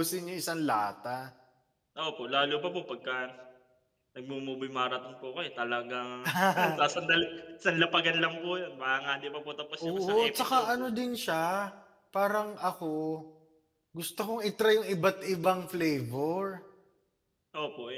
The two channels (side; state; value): both; identical; correlation 1.00